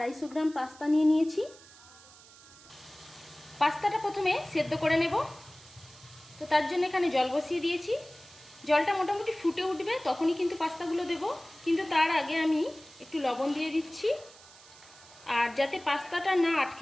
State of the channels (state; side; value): noise; right; hiss, 22 dB below the sound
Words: গ্রাম পাস্তা নিয়ে নিয়েছি। পাস্তাটা প্রথমে সেদ্ধ করে নেব। তো তার জন্য এখানে জল বসিয়ে দিয়েছি। জলটা মোটামুটি ফুটে উঠবে, তখনই কিন্তু পাস্তাগুলো দেব। কিন্তু তার আগে আমি একটু লবণ দিয়ে দিচ্ছি, আর যাতে পাস্তাটা না